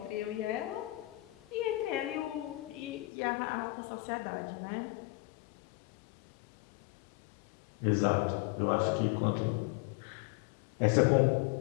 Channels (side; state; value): right; drops out; at 3.1 s